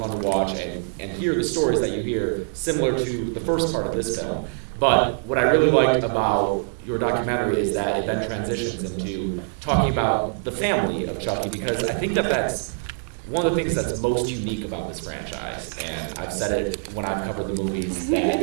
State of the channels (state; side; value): silent; left; digital silence